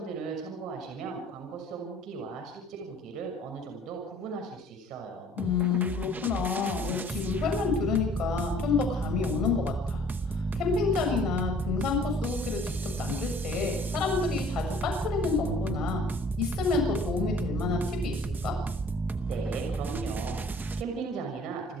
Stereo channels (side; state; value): both; normal; correlation 0.54